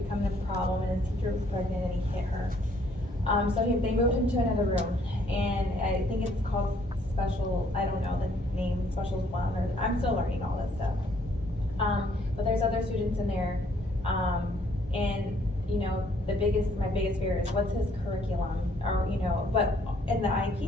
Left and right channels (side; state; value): both; normal; correlation 0.64